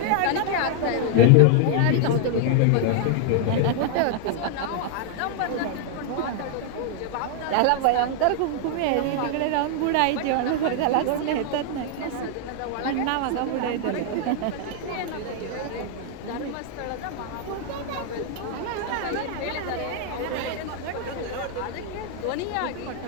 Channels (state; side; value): different; both; correlation 0.00